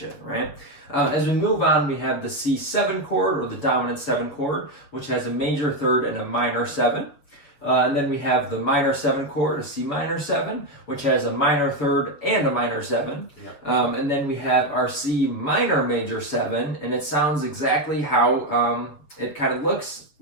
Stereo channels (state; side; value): late; right; 7.3 ms